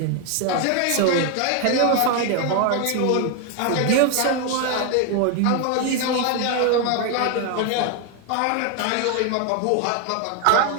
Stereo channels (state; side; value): different; both; correlation 0.01